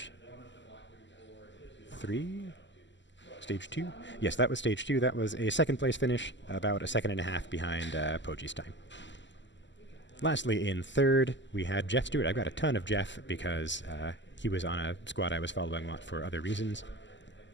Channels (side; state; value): right; late; 0.53 ms